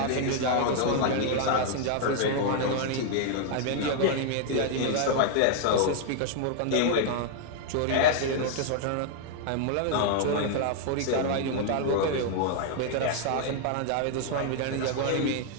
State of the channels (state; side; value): different; both; correlation 0.00